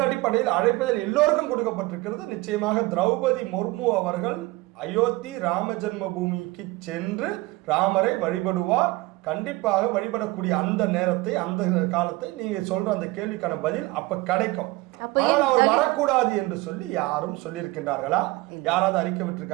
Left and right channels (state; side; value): quieter; left; 21.2 dB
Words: அடிப்படையில் அழைப்புதல் எல்லோருக்கும் கொடுக்கப்பட்டிருக்கிறது. நிச்சயமாக திரௌபதி முர்மு அவர்கள் அயோத்தி ராம ஜென்ம பூமிக்கு சென்று ராமரை வழிபடுவார். கண்டிப்பாக வழிபடக்கூடிய அந்த நேரத்தை, அந்த காலத்தை நீங்க சொல்ற அந்த கேள்விக்கான பதில் அப்ப கிடைக்கும். ஆனால் அவர் வரக்கூடாது என்று சொல்லி யாரும் சொல்லியிருக்கின்றார்களா? யாராவது அறிக்கை